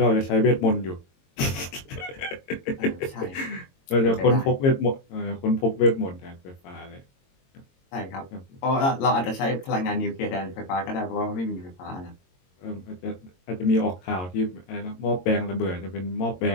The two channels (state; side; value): late; right; 22 ms